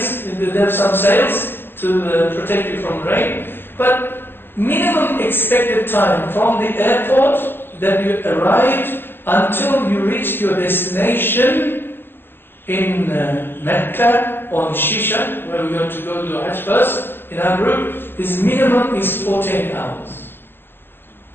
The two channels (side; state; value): right; late; 0.10 ms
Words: they have some sails to protect you from rain. But minimum expected time from the airport that you arrived until you reached your destination in Mecca or in Shisha, where we're going to go to Hajj first in our group, is minimum is 14 hours.